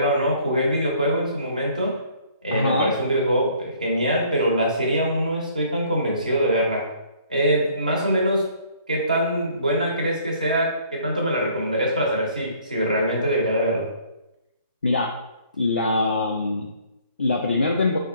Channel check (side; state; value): both; inverted; correlation -0.59